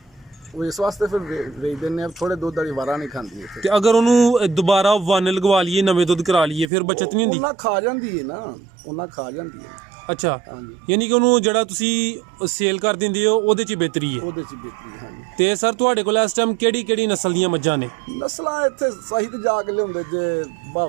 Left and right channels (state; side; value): drops out; left; at 6.7 s